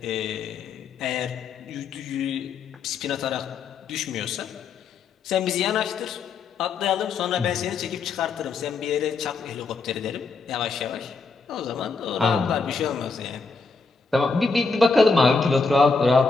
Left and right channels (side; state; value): right; quieter; 4.4 dB